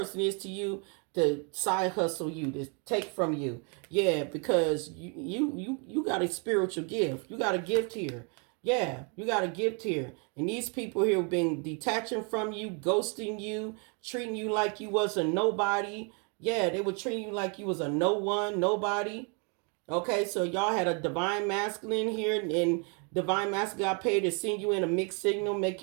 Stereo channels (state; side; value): quieter; left; 36.4 dB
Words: is to you, to side hustle you, to take from you. Yeah, because you got a spiritual gift. You got a gift here. Yeah, you got a gift here. And these people here have been detaching from you, ghosting you, treating you like you was a nobody. Yeah, they were treating you like you was a no one, nobody. Okay, so y'all had a divine masculine here, and divine masculine got paid to send you in a mixed signal, make